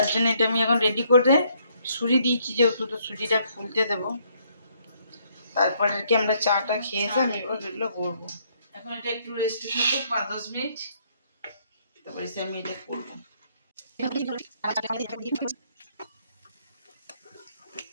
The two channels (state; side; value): inverted; both; correlation -0.68